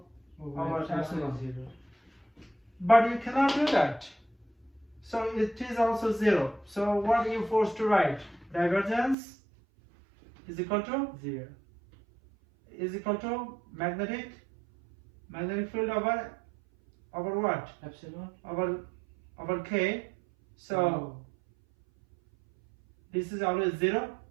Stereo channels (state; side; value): drops out; left; at 9.2 s